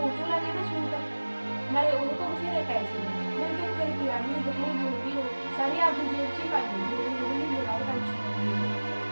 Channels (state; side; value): inverted; both; correlation -1.00